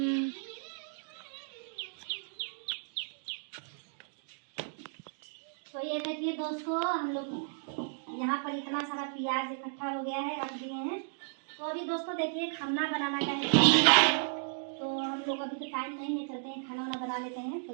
तो ये देखिए दोस्तों, हम लोग यहाँ पर इतना सारा प्याज इकट्ठा हो गया है, रख दिए हैं। तो अभी दोस्तों देखिए खाना बनाना का है, तो हम लोग अभी तो टाइम नहीं है, चलते हैं खाना वाना बना लेते हैं।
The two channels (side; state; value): left; silent; digital silence